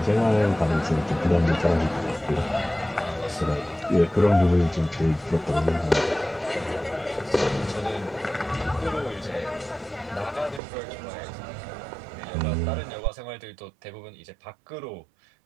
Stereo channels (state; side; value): drops out; left; at 10.6 s